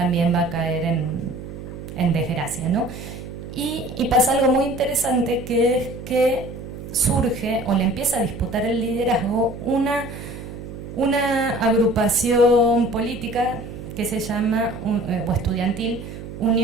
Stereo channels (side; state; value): right; noise; hum, 11 dB below the sound